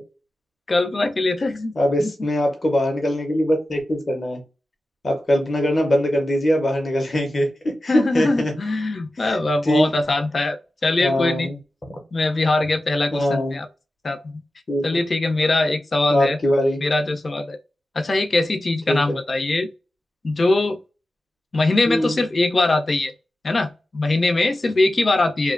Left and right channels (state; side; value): normal; both; correlation 0.93